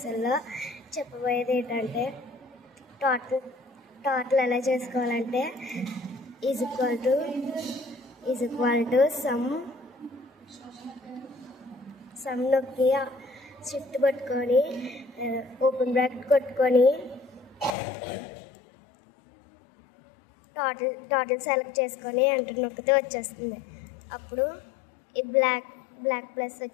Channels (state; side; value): drops out; right; at 17.8 s